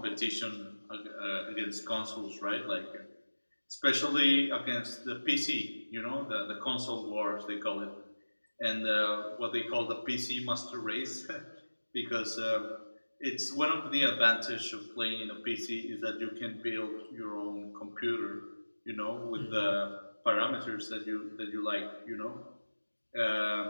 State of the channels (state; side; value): inverted; both; correlation -1.00